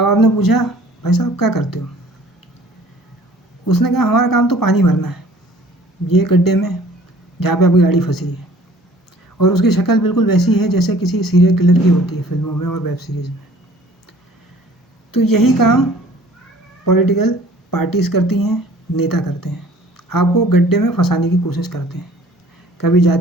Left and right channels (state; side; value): normal; both; correlation 0.52